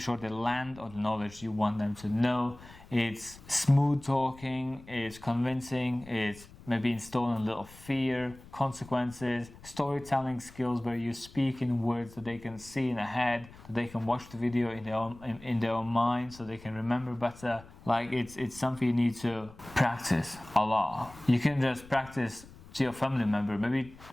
they land on the knowledge you want them to know. It's smooth talking, it's convincing, it's maybe installing a little fear, consequences, storytelling skills where you speak in words that they can see in their head, that they can watch the video in their own mind, so they can remember better. Like it's something you need to practice a lot. You can just practice to your family member, maybe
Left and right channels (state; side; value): noise; left; rumble, 20 dB below the sound